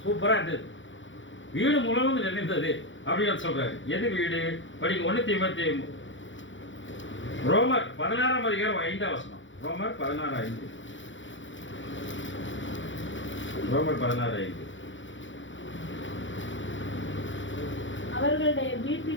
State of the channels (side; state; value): right; late; 0.56 ms